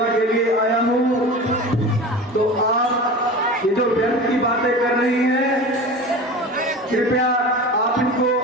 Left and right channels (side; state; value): both; normal; correlation 0.33